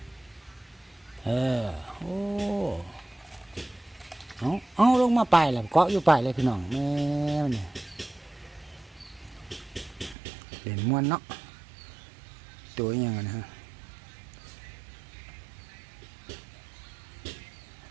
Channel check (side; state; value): left; drops out; at 10.2 s